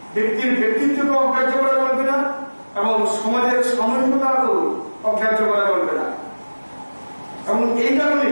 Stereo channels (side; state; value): both; inverted; correlation -1.00